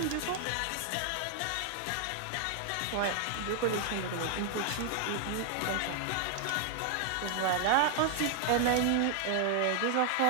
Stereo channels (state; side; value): different; both; correlation 0.00